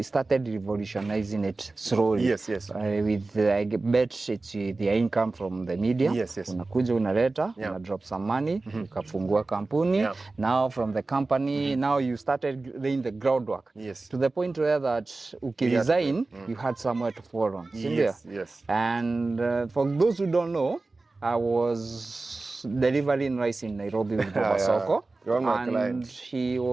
started revolutionizing it slowly. Yes. With I bet it's the income from the media. Yes. Unakuja unaleta, una drop some money, ukafungua kampuni. Now from the company, now you started laying the groundwork. Yes. To the point where that ukiresign, you had somewhere to fall on. Yes. And for those who don't know, I was delivering rice in Nairobi with Baba Soko, and he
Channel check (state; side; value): quieter; left; 3.4 dB